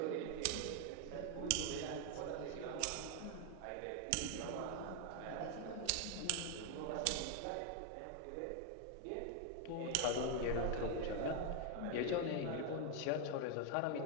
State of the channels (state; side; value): different; both; correlation 0.01